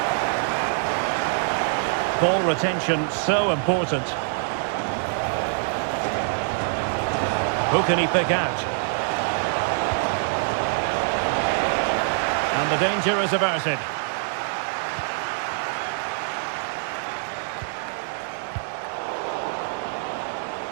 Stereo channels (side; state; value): left; silent; digital silence